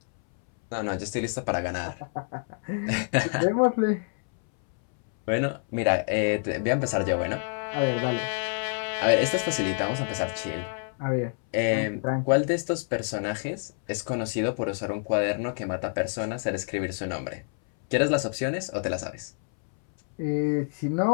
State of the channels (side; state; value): right; silent; 60 dB below the other